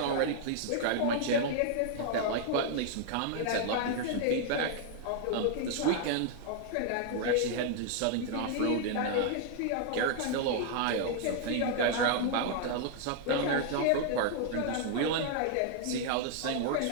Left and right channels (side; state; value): both; different; correlation 0.00